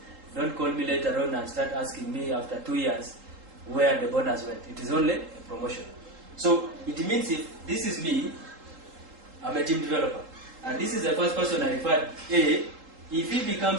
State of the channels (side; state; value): left; late; 3.8 ms